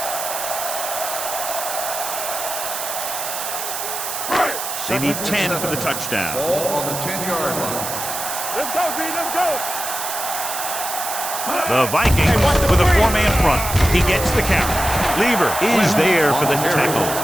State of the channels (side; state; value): right; noise; hiss, 5 dB below the sound